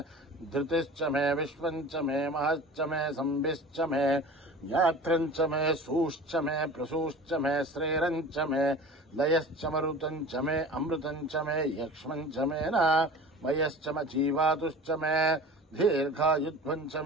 धृतिश्च मे विश्वञ्च मे महश्च मे संभिश्च मे ज्ञात्रञ्च मे सूश्च मे प्रसूश्च मे श्रेरञ्च मे लयश्च मरुतञ्च मे अमृतञ्च मे यक्ष्मञ्च मे न मयश्च म जीवातुश्च मे दीर्घायुध्वञ्च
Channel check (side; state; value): both; normal; correlation 0.38